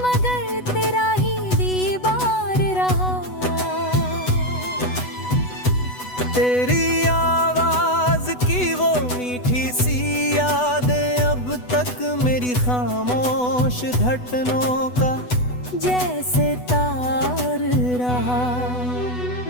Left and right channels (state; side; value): late; right; 8.1 ms